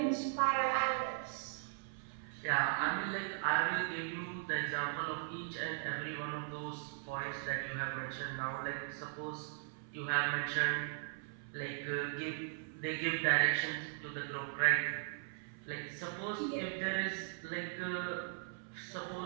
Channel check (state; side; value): silent; left; 52 dB below the other